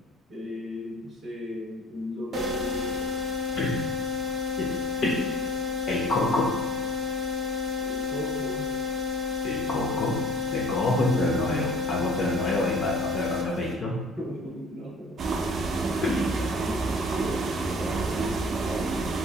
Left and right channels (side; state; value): both; normal; correlation 0.48